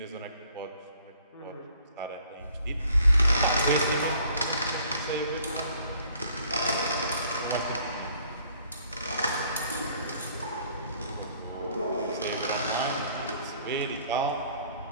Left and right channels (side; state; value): both; inverted; correlation -0.59